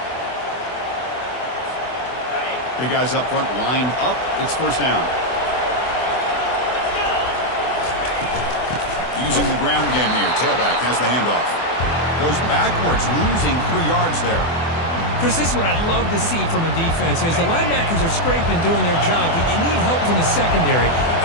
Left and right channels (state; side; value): late; right; 24 ms